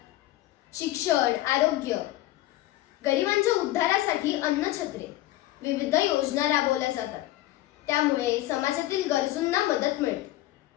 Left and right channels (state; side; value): quieter; right; 16.0 dB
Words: शिक्षण, आरोग्य, गरिबांच्या उद्धारासाठी अन्नछत्रे, विविध योजना राबवल्या जातात. त्यामुळे समाजातील गरजूंना मदत मिळते.